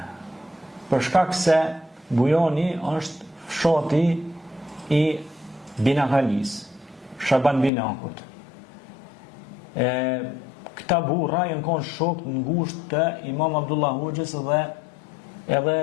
për shkak se bujoni është fshati i Binakalis, Shaban Binakut. Këta burra janë konë shok të ngushtë të Imam Abdullah Hoxhës dhe edhe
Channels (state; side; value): drops out; right; at 7.7 s